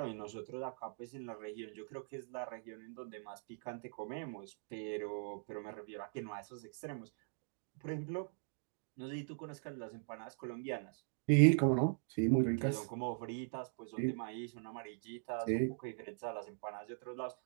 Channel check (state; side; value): silent; left; digital silence